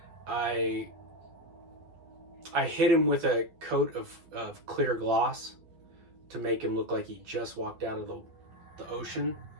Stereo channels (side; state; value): left; late; 12 ms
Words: I hit him with a coat of clear gloss to make him look like he just walked out of the ocean.